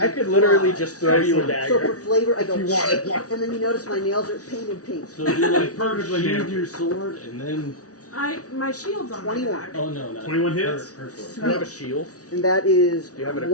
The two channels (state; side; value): late; right; 0.67 ms